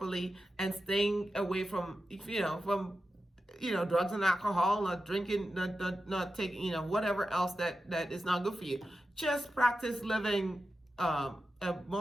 and staying away from drugs and alcohol, not drinking, not taking whatever else that is not good for you. Just practice living a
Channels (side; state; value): both; normal; correlation 0.91